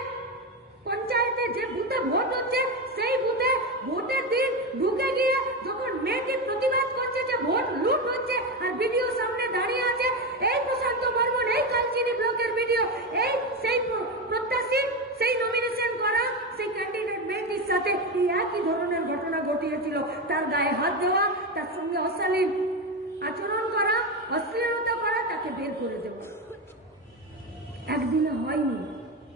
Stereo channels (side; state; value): both; normal; correlation 0.15